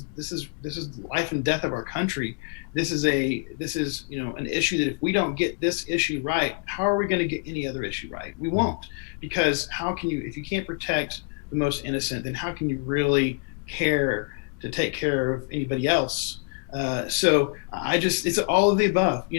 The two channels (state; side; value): quieter; right; 34.8 dB